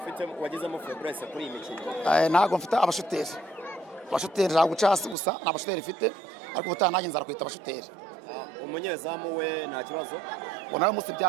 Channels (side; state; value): left; drops out; at 5.2 s